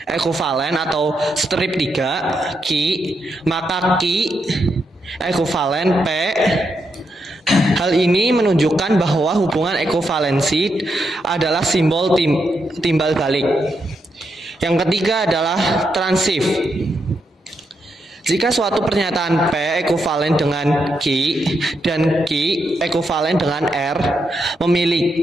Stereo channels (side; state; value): both; normal; correlation 0.82